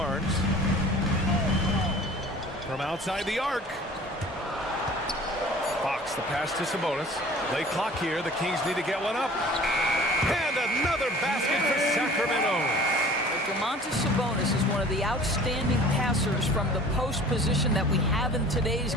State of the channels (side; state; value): both; normal; correlation 0.46